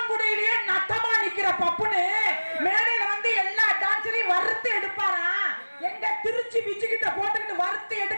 நட்டமா நிக்கிற பப்புனு மேடையில வந்து எல்லா டான்ஸரையும் வறுத்து எடுப்பாரா. எங்க திருச்சி பிச்சுக்கிட்ட போட்டுக்கிட்டு வறுத்து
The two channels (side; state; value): both; inverted; correlation -1.00